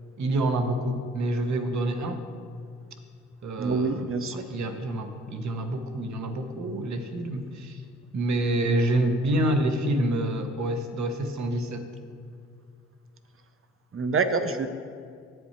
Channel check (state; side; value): normal; both; correlation 0.54